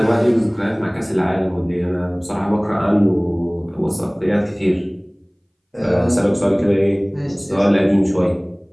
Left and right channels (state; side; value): identical; both; correlation 1.00